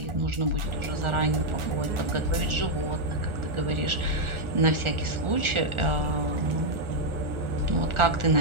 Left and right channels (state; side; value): late; left; 1.4 ms